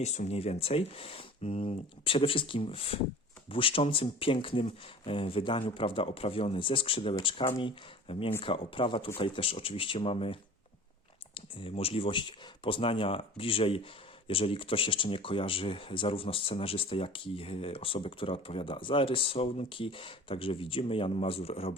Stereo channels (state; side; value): normal; both; correlation 0.41